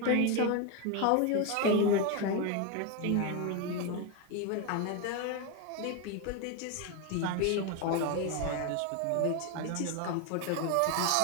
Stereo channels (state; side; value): different; both; correlation 0.02